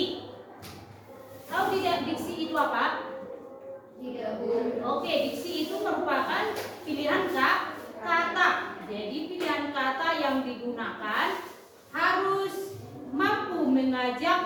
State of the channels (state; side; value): identical; both; correlation 1.00